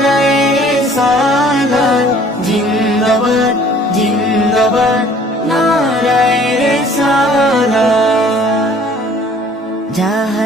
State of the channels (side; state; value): both; normal; correlation 0.54